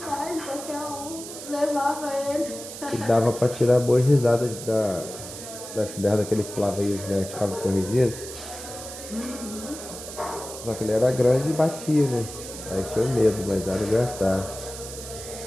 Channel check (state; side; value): noise; right; hiss, 11 dB below the sound